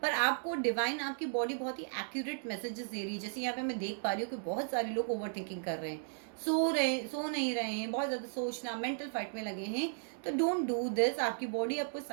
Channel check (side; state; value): left; silent; digital silence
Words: पर आपको डिवाइन, आपकी बॉडी बहुत ही एक्यूरेट मैसेजेस दे रही है। जैसे यहाँ पे मैं देख पा रही हूँ कि बहुत सारे लोग ओवर थिंकिंग कर रहे हैं, सो नहीं रहे हैं, बहुत ज़्यादा सोचना, मेंटल फाइट में लगे हैं। तो डोंट डू दिस। आपकी बॉडी आपको